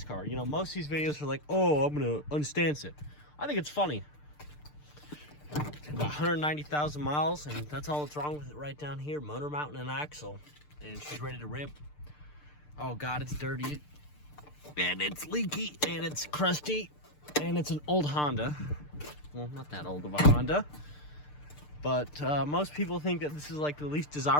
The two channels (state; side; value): late; right; 6.7 ms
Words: car. You know, most of these videos are like, oh, I'm gonna unstance it. I think it's funny. About 190,000 miles, and that's all that's wrong with it right down here. Motor mount and an axle, and she's ready to rip. Oh god, it's dirty, and it's leaky, and it's crusty, and it's an old Honda. Well, not that old of a Honda, but most people think that this is like the least